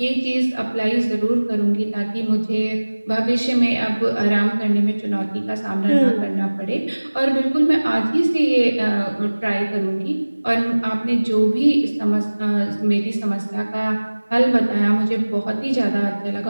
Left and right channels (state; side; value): inverted; both; correlation -1.00